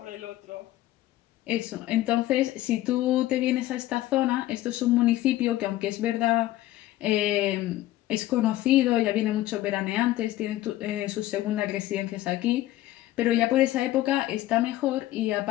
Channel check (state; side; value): quieter; right; 15.2 dB